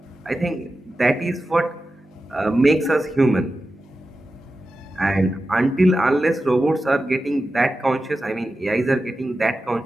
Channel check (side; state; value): both; normal; correlation 0.92